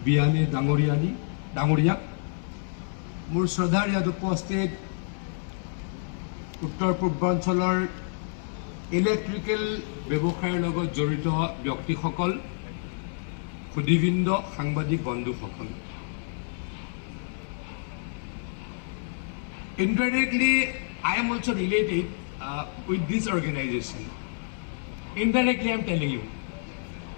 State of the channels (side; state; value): right; silent; 59 dB below the other